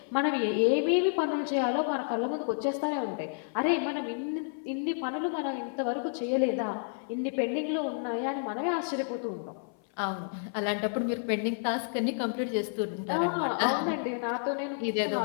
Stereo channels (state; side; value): silent; right; 57 dB below the other